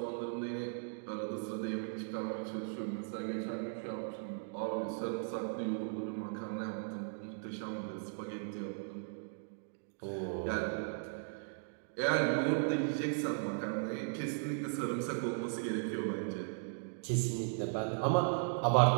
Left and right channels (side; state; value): left; silent; digital silence